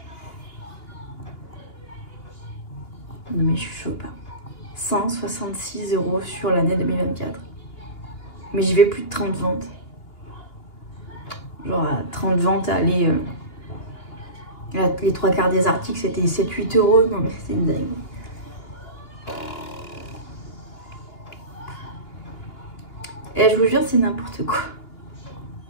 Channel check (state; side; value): late; right; 2.9 ms